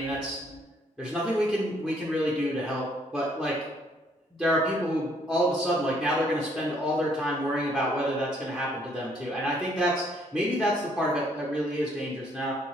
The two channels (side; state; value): both; normal; correlation 0.66